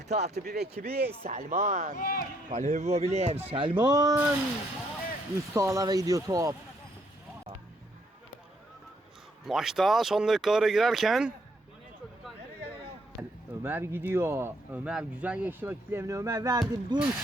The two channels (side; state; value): both; normal; correlation 0.71